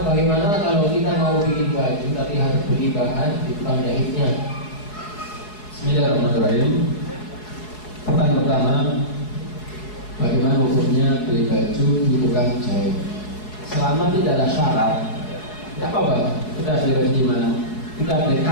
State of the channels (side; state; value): right; late; 4.7 ms